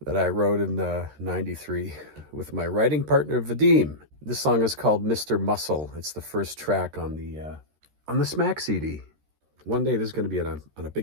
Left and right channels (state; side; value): late; left; 13 ms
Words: that I wrote in '93 with my writing partner Vadim. This song is called "Mr. Muscle." It's the first track on the Smack CD. One day this is going to be on a